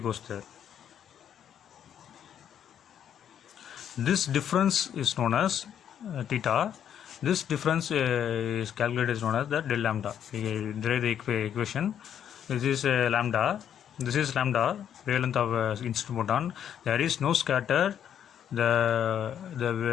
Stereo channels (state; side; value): quieter; right; 9.3 dB